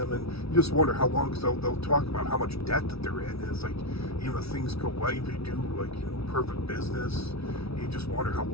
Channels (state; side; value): late; right; 0.77 ms